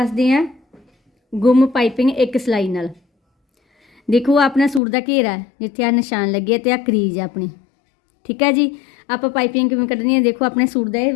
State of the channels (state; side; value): drops out; right; at 4.8 s